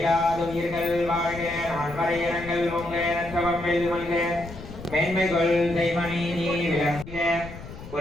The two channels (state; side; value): noise; left; rumble, 13 dB below the sound